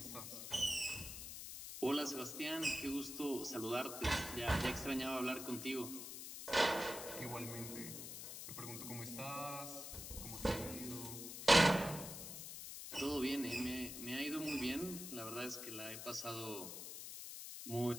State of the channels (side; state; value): left; noise; hiss, 8 dB below the sound